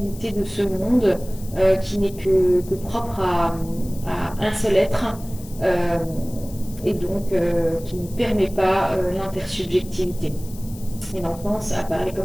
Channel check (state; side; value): noise; left; hiss, 19 dB below the sound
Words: de ce monde qui n'est que propre à un seul être, euh, et donc qui ne permet pas l'intersubjectivité. Et l'enfance apparaît